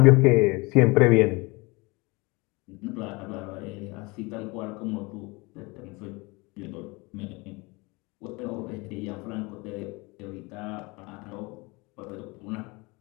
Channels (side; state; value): right; quieter; 25.8 dB